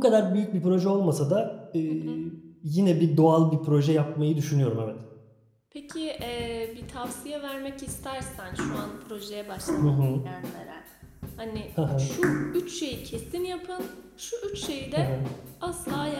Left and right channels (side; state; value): both; identical; correlation 1.00